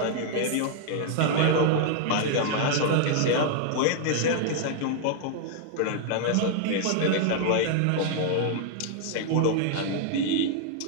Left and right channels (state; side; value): different; both; correlation -0.01